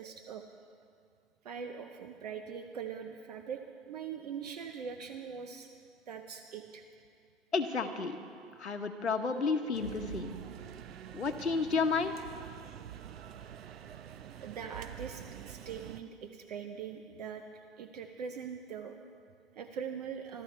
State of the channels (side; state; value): both; normal; correlation 0.41